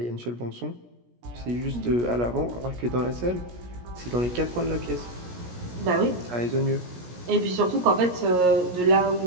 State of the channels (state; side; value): late; left; 17 ms